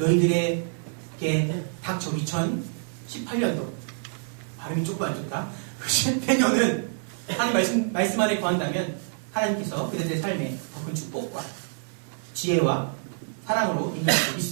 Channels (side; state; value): left; silent; 60 dB below the other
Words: 닥쳐 2018년도 발음이 조금 안 좋다. 내년은 하나님 말씀 안에 거한다면 하나님께서 그들의 삶에 더 큰 축복과 지혜와 사랑으로 인도하실 수